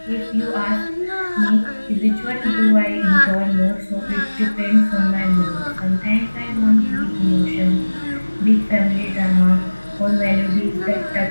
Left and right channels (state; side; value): inverted; both; correlation -1.00